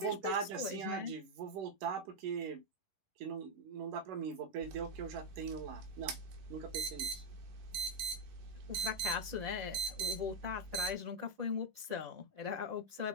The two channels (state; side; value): late; left; 10 ms